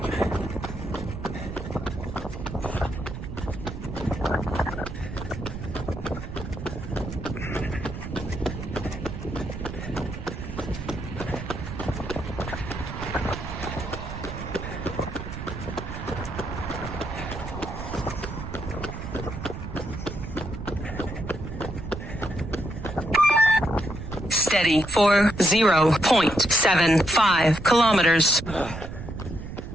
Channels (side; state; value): right; noise; rumble, 8 dB below the sound